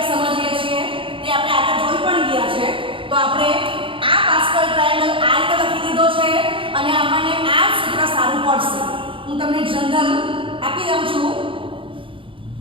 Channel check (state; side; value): late; left; 0.25 ms